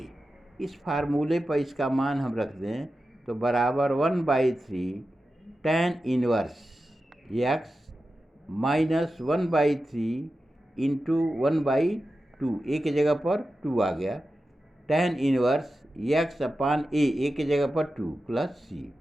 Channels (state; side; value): normal; both; correlation 0.92